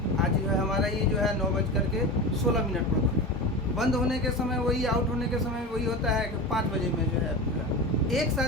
आज जो है हमारा ये जो है 9:16 पर बंद होने के समय वही, आउट होने के समय वही होता है कि 5 बजे में जो है ऐप खुला। एक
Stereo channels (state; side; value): normal; both; correlation 0.26